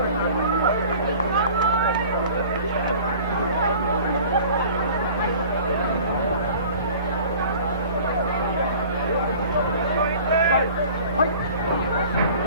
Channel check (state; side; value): inverted; both; correlation -0.46